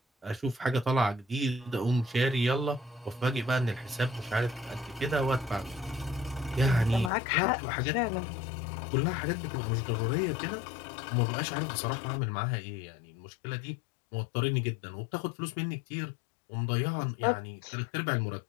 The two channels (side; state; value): right; drops out; at 7.1 s